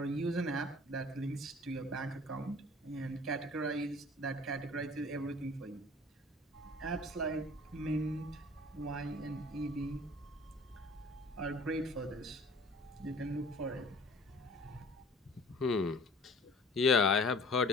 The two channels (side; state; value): both; normal; correlation 0.48